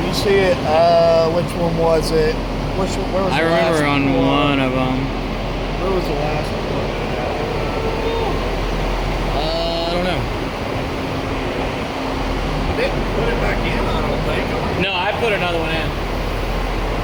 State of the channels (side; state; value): both; identical; correlation 1.00